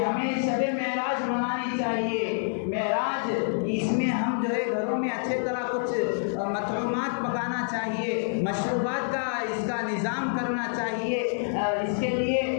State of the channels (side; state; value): right; silent; digital silence